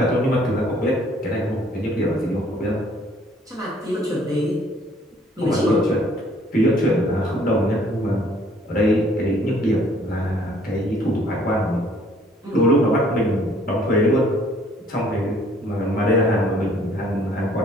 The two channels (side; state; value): both; normal; correlation 0.60